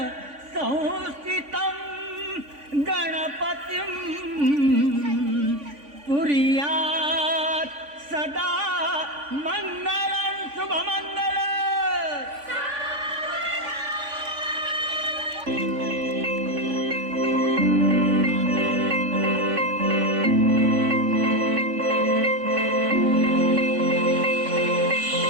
कुर्यात् सदा मंगलं शुभमंगल.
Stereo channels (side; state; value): left; late; 3.5 ms